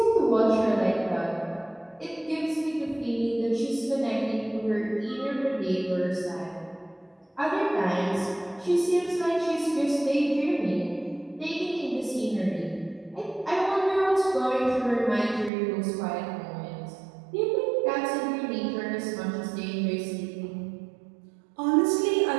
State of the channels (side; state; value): left; drops out; at 15.5 s